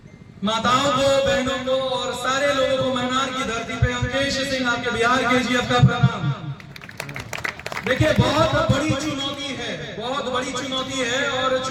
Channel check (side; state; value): both; identical; correlation 1.00